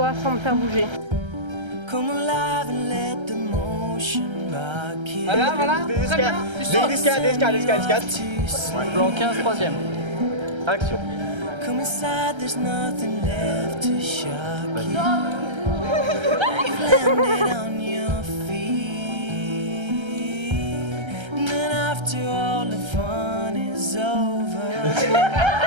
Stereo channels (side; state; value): left; late; 1.3 ms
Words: sans me faire bouger. Voilà, voilà. Très bien. Tu sautes. Descade. Plan 15, troisième. Action. Come inside, there's nothing left to shock you. You've landed on your feet. And then after all the fun is over,